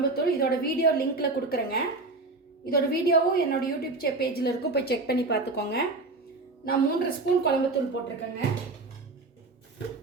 இதோட வீடியோ லிங்க்கில் கொடுக்குறேங்க. இதோட வீடியோவும் என்னோடய யூடியூப் பேஜில் இருக்கும், போய் செக் பண்ணி பார்த்துக்கோங்க. நான் 3 ஸ்பூன் குழம்புத்தூள் போட்டிருக்கேங்க.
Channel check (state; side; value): quieter; left; 3.4 dB